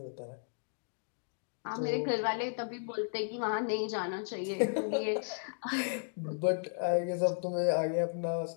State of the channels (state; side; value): silent; right; digital silence